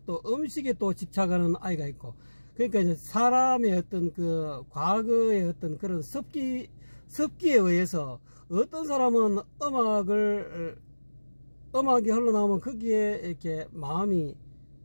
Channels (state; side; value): inverted; both; correlation -1.00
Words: 또 음식에 또 집착하는 아이가 있고, 그러니까 이제 사람의 어떤 그 과거의 어떤 그런 습기에 의해서 어떤 사람은 음악이 흘러나오면 거기에 이렇게 마음이